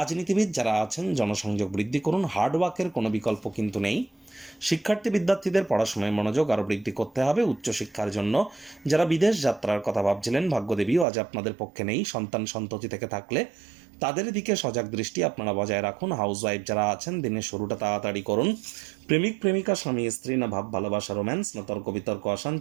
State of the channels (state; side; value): drops out; left; at 11.1 s